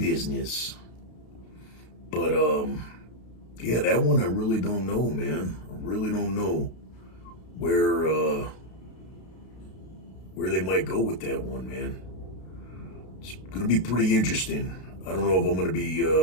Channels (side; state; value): right; late; 32 ms